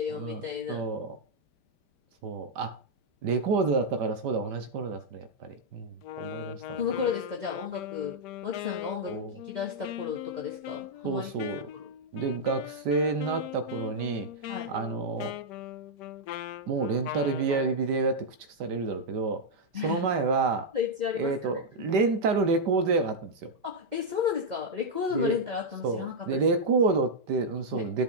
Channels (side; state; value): left; late; 5.1 ms